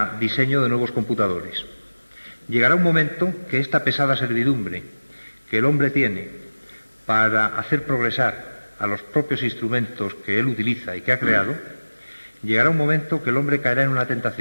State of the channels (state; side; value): inverted; both; correlation -1.00